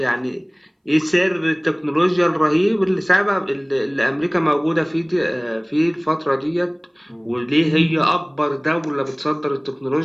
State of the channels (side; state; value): both; identical; correlation 1.00